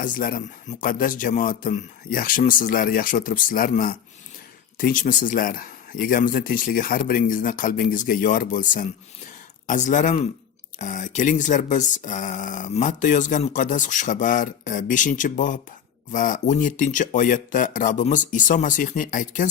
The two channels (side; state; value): right; quieter; 8.4 dB